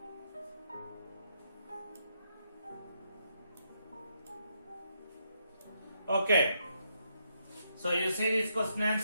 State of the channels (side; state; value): both; inverted; correlation -0.78